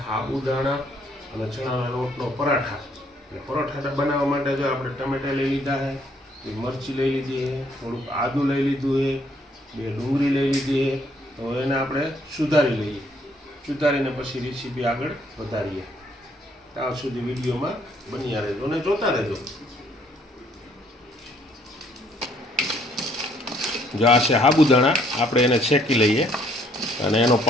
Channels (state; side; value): normal; both; correlation 0.66